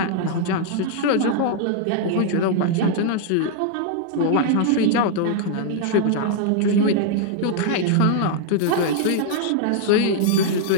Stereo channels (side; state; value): both; different; correlation 0.00